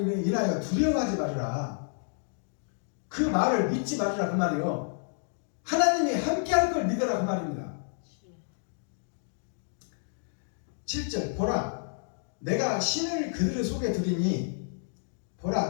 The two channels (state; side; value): silent; right; digital silence